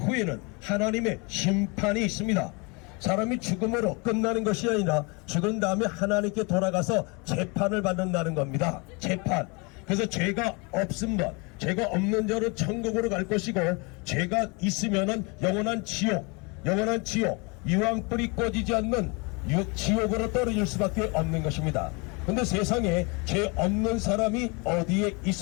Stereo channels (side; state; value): right; quieter; 30.0 dB